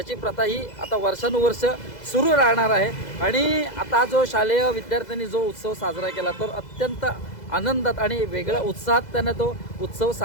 प्रथा ही आता वर्षानुवर्ष सुरू राहणार आहे. आणि आता जो शालेय विद्यार्थ्यांनी जो उत्सव साजरा केला तो अत्यंत आनंदात आणि वेगळ्या उत्साहात त्याने तो उत्सव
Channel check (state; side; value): late; right; 2.0 ms